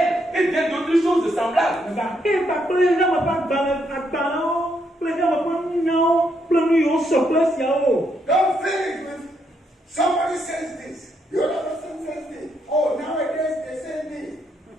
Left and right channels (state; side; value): normal; both; correlation 0.76